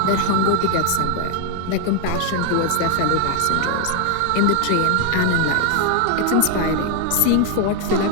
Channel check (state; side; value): different; both; correlation 0.00